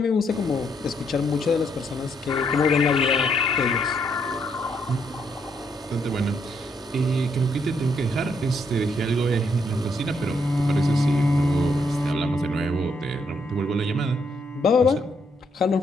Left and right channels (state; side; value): normal; both; correlation 0.74